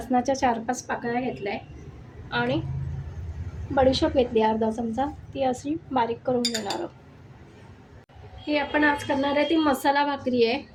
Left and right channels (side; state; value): both; identical; correlation 1.00